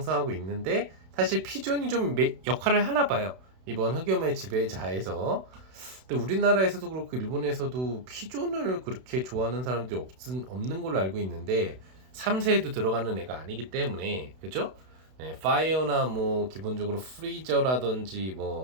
있는데 사실 피존이 좀 역할을 하나 봐요. 이번 흑염의 지배자에서. 근데 우리나라에서도 그렇고 일본에서도 피존을 그렇게 좋아하는 사람들이 없는 걸로 알고 있는데 3세에도 들어가는 애가 아니기 때문에 그죠? 네, 파이어나 뭐 기본적으로 프리저라든지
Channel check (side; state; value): left; late; 32 ms